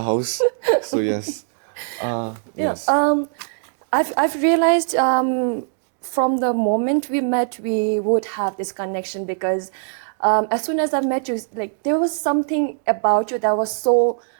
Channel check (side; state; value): left; silent; digital silence